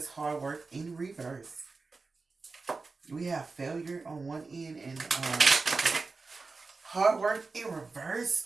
hard work in reverse. We have failure on one end and hard work in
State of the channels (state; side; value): quieter; left; 4.1 dB